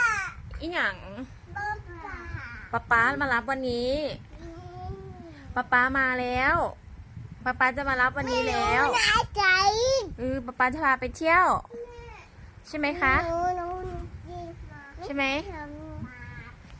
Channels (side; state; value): both; identical; correlation 1.00